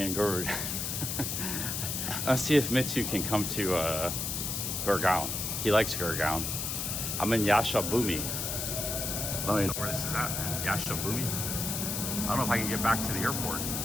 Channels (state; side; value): noise; left; hiss, 2 dB below the sound